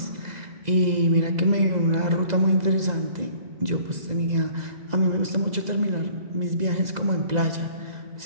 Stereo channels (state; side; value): late; left; 2.0 ms